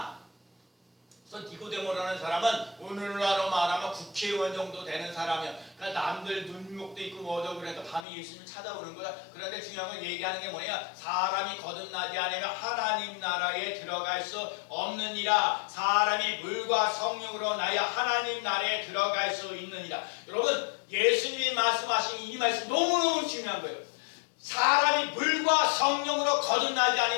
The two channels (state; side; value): drops out; right; at 8.1 s